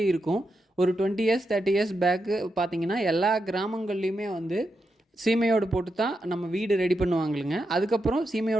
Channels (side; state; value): both; normal; correlation 0.86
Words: இருக்கும். ஒரு 20 இயர்ஸ் 30 இயர்ஸ் பேக்கு பார்த்தீங்கன்னா எல்லா கிராமங்கள்லேயுமே வந்து சீமையோடு போட்டு தான் நம்ம வீடு ரெடி பண்ணுவாங்களுங்க. அதுக்கப்புறம்